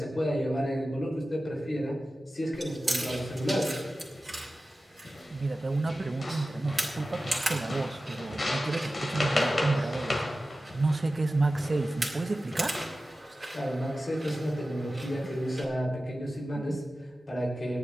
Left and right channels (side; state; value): both; normal; correlation 0.94